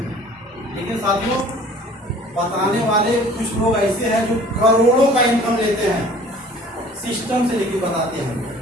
लेकिन साथियों, बताने वाले कुछ लोग ऐसे हैं जो करोड़ों का इनकम लेते हैं, सिस्टम से लेके बताते हैं।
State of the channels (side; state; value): both; normal; correlation 0.49